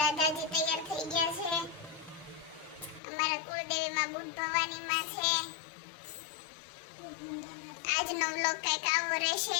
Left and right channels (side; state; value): right; drops out; at 3.0 s